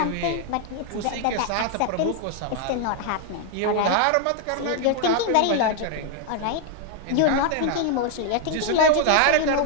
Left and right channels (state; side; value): different; both; correlation 0.00